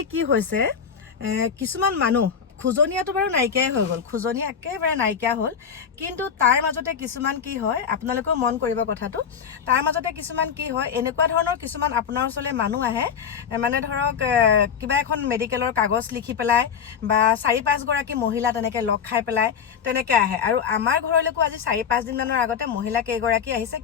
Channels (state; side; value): quieter; right; 7.2 dB